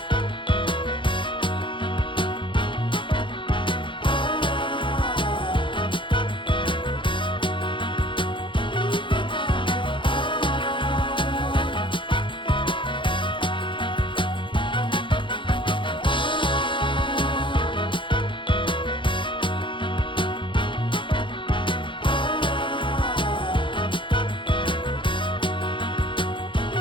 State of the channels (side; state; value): right; late; 0.24 ms